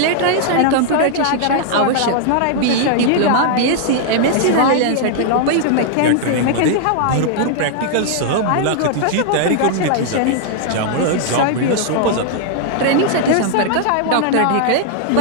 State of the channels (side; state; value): both; different; correlation -0.01